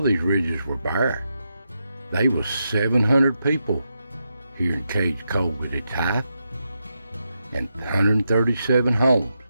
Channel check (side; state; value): both; inverted; correlation -0.85